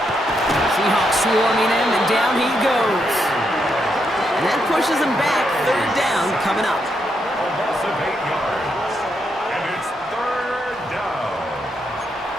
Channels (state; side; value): normal; both; correlation 0.80